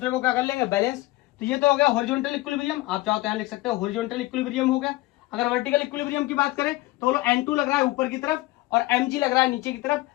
को क्या कर लेंगे, बैलेंस। तो ये तो हो गया हॉरिजॉन्टल इक्विलिब्रियम, आप चाहो तो यहां लिख सकते हो हॉरिजॉन्टल इक्विलिब्रियम हो गया। अगर वर्टिकल इक्विलिब्रियम की बात करें तो बोलो N2 लग रहा है ऊपर की तरफ और mg लग रहा है नीचे की तरफ,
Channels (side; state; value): right; quieter; 19.2 dB